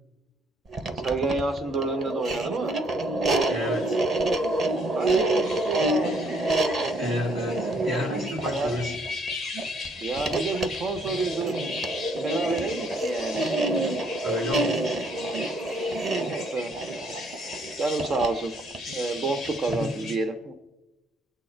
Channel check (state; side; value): normal; both; correlation 0.66